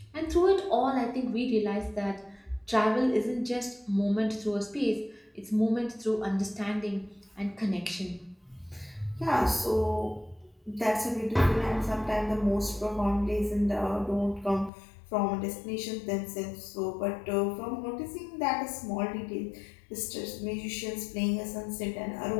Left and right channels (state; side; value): drops out; right; at 14.7 s